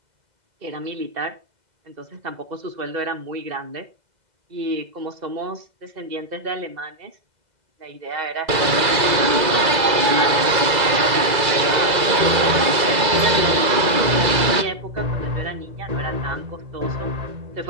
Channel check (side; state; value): left; late; 2.0 ms